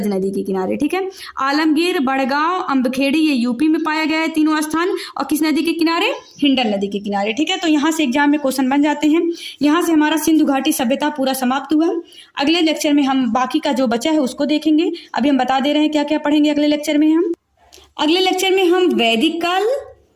नदी के किनारे, ठीक है। आलमगीर, बड़गांव, अम्बखेड़ी ये यूपी में पाया गया है तीनों स्थान, और किस नदी के किनारे, हिंडन नदी के किनारे, ठीक है। तो यहाँ से एग्जाम में क्वेश्चन बन जाते हैं। यहाँ से हमारा सिंधु घाटी सभ्यता पूरा समाप्त हुआ। अगले लेक्चर में हम बाकी का जो बचा है उसको देखेंगे। अभी हम बता दे रहे हैं क्या क्या पढ़ेंगे अगले लेक्चर में। हम अगले लेक्चर में हम वैदिक काल,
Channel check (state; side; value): identical; both; correlation 1.00